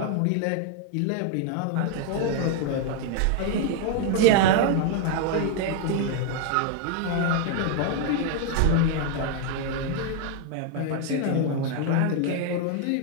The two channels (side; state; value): both; different; correlation 0.00